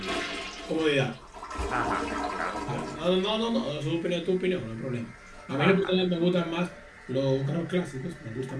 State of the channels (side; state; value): both; identical; correlation 1.00